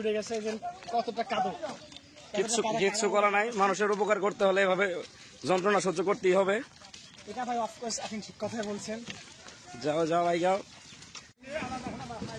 গেছে যে কতটা কাঁদো। কিচ্ছু করা নাই, মানুষের উপকার করতে হলে এভাবে যন্ত্রণা সহ্য করতেই হবে। এটা ভাই অফকোর্স আপনি ঠিক কথাই বলছেন। যাও যাও ভাই যাও,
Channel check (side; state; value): both; identical; correlation 1.00